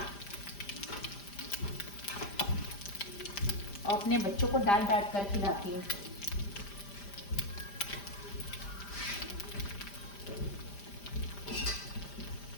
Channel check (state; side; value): late; right; 5.0 ms